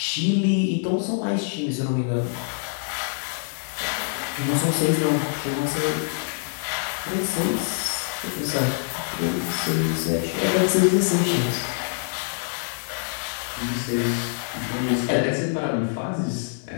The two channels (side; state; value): right; silent; 59 dB below the other